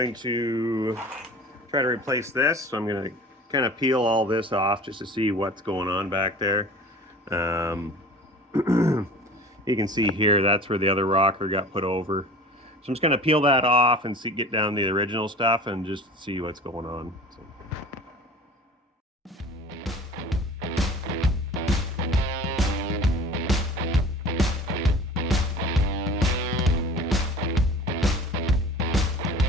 to try to replace this. So I'm gonna kind of peel all this off just to see what's going on back there. You can see here, that's where the other rocker got put over. So I'm just gonna peel that off and get down the original stuff and just see what's going on. So.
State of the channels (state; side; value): normal; both; correlation 0.41